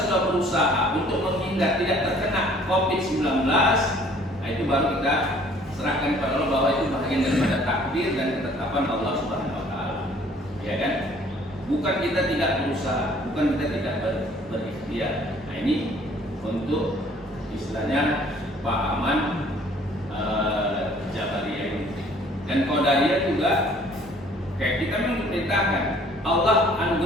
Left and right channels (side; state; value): both; normal; correlation 0.56